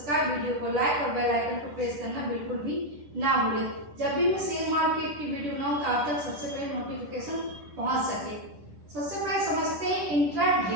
वीडियो को लाइक और बेल आइकन को प्रेस करना बिल्कुल भी ना भूलें। जब भी मैं शेयर मार्केट की वीडियो बनाऊँ तो आप तक सबसे पहले नोटिफिकेशन पहुँच सके। सबसे पहले समझते हैं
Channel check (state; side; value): late; left; 10 ms